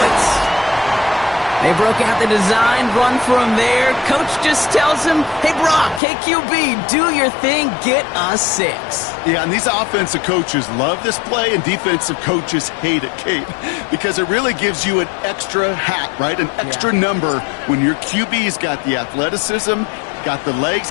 They broke out the design run from there. Coach just tells him, hey, Brock, KQB, do your thing, get us 6. Yeah, and these offensive coaches love this play, and defensive coaches hate it, Kate, because it really gives you an extra hat, right? An extra number when your QB's got the athleticism, got the legs,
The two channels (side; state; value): right; drops out; at 6.0 s